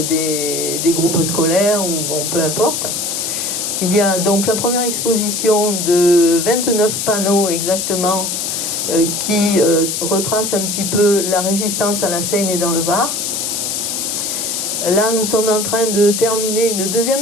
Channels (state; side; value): noise; left; hiss, 2 dB below the sound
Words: des groupes scolaires, ou bon, peu importe. Il y a donc la première exposition de 29 panneaux exactement qui retrace un petit peu la résistance à la Seine et dans le Var. Là, nous sommes en train de terminer une